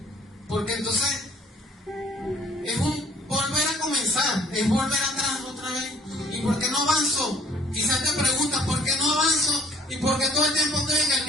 porque entonces es un volver a comenzar, es volver atrás otra vez. ¿Y por qué no avanzo? Quizás te preguntas, ¿por qué no avanzo? ¿Y por qué todo el tiempo estoy en el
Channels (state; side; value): normal; both; correlation 0.58